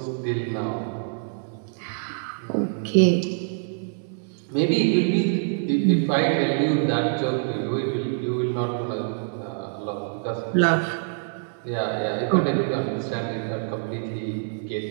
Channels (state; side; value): silent; left; 62 dB below the other